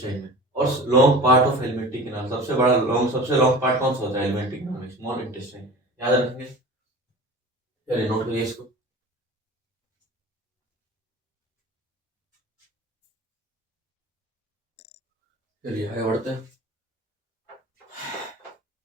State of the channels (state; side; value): normal; both; correlation 0.38